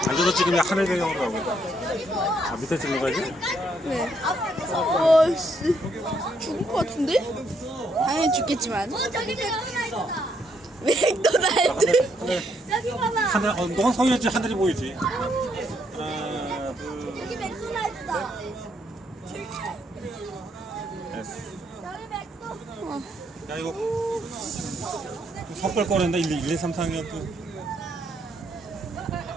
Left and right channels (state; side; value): normal; both; correlation 0.73